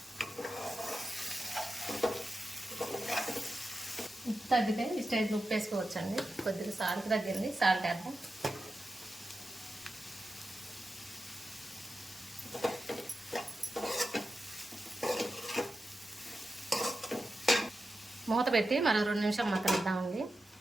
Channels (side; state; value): both; normal; correlation 0.91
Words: ఉప్పు తగ్గితే ఈ స్టేజ్లో ఉప్పు వేసుకోవచ్చండి. కొద్దిగా సాల్ట్ తగ్గింది, సాల్ట్ వేద్దాం. మూత పెట్టి మరో 2 నిమిషాలు మగ్గనిద్దామండి.